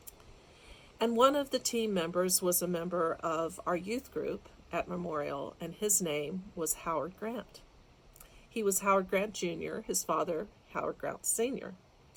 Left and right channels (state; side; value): identical; both; correlation 1.00